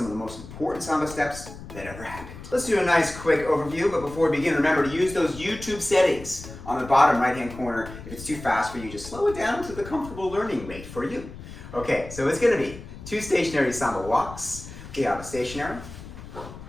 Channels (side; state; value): left; noise; rumble, 14 dB below the sound